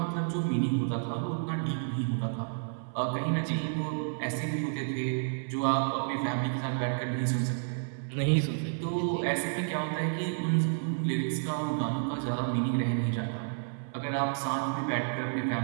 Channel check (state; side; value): silent; left; 57 dB below the other